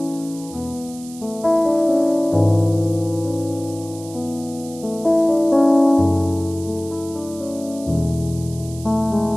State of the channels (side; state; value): right; noise; hiss, 18 dB below the sound